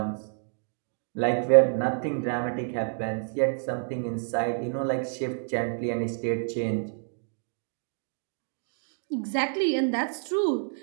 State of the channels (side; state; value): left; silent; digital silence